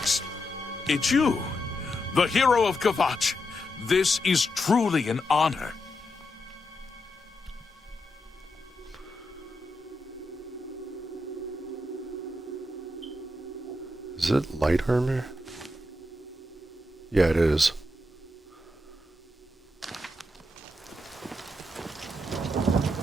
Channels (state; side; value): normal; both; correlation 0.85